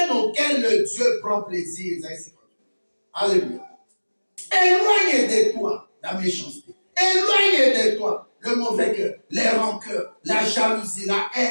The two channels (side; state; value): both; inverted; correlation -1.00